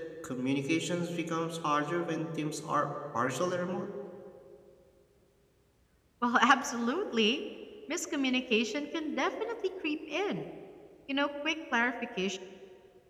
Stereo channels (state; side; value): identical; both; correlation 1.00